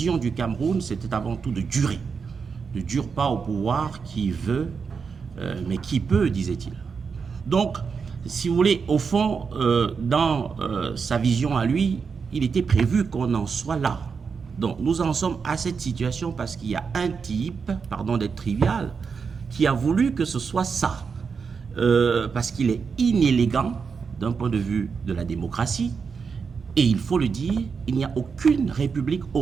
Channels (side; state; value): left; quieter; 5.6 dB